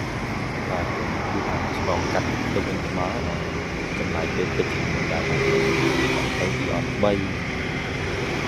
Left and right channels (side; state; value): both; identical; correlation 1.00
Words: បាទគឺថាឆ្លងកាត់ទៅវិញមកចំណាយពេលទឹកជាមួយដែរទៅទីអត់3